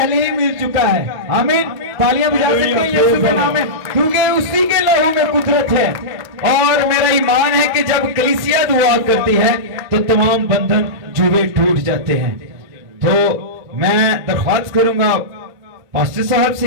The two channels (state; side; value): late; left; 1.9 ms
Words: ही मिल चुका है। आमीन, तालियां बजा सकते हैं यीशु के नाम में, क्योंकि उसी के लहू में कुदरत है। और मेरा ईमान है कि जब कलीसिया दुआ करती है तो तमाम बंधन जुए टूट जाते हैं। तो मैं दरख्वास्त करूंगा पास्टर साहब से